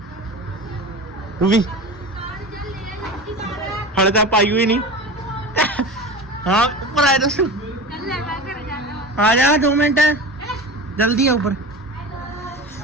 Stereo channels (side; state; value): both; normal; correlation 0.31